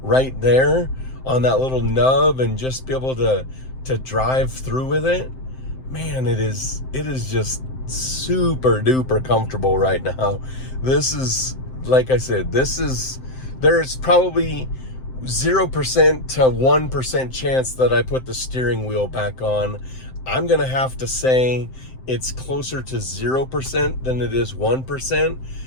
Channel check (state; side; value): late; right; 7.7 ms